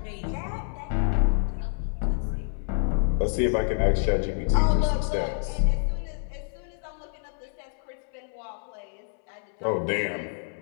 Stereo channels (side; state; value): right; silent; 60 dB below the other